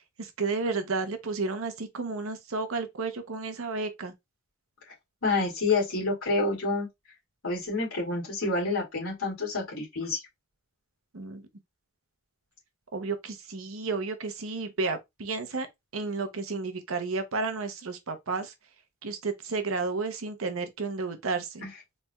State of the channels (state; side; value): normal; both; correlation -0.05